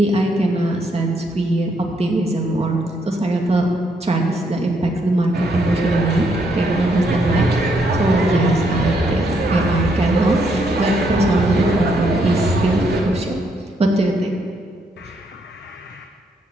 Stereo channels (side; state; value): both; normal; correlation 0.74